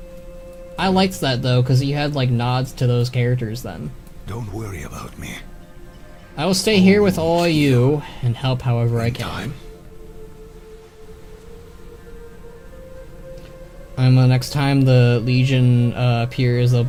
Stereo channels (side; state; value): both; identical; correlation 1.00